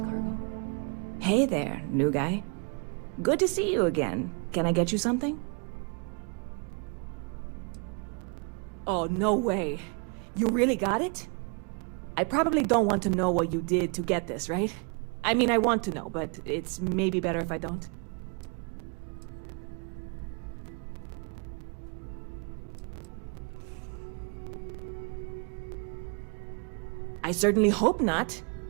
Hey there, new guy. Good to see you again. Can I get you something? Oh, no way. You really got it? I probably don't want to know what you did to get this, right? I mean, I want to know, but it's maybe better if I don't. I certainly hope not.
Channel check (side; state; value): left; quieter; 36.7 dB